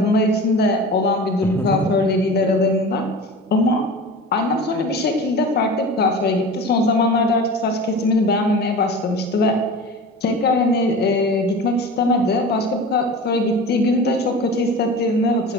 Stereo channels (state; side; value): normal; both; correlation 0.34